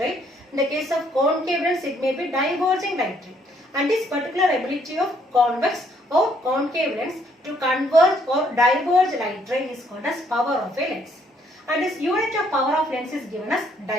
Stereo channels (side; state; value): both; normal; correlation 0.67